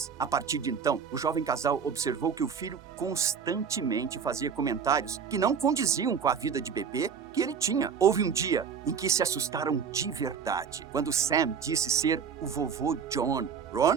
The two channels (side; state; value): left; quieter; 6.7 dB